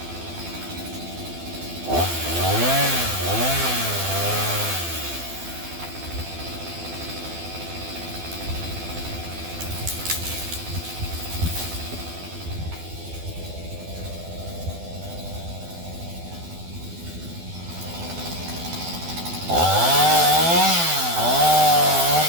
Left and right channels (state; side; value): late; left; 12 ms